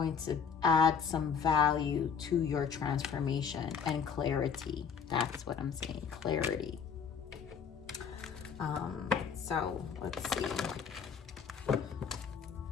to add some value to your transformation and clarity. That's what I'm saying, clarity. So let's see.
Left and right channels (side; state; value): right; quieter; 6.7 dB